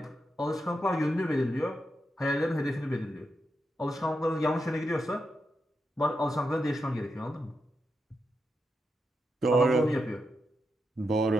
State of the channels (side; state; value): both; normal; correlation 0.86